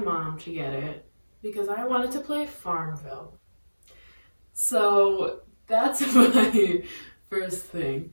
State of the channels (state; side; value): inverted; both; correlation -1.00